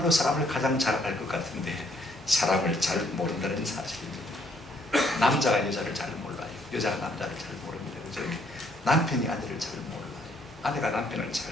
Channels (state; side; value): normal; both; correlation 0.68